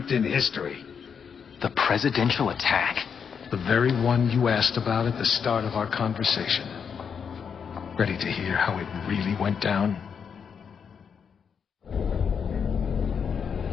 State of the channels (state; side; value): quieter; right; 6.8 dB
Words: in history. The presidential attack? The very one you asked about at the start of our conversation. Ready to hear how it really went down?